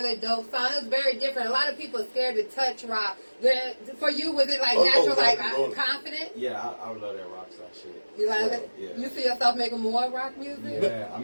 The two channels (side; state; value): both; inverted; correlation -1.00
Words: dope song. It was very different. A lot of people are scared to touch rock. For you, was it like natural, rock and roll. confident? Yeah, I love that rock star shit. You like So, it? yeah. You see yourself making more rock music? Yeah, I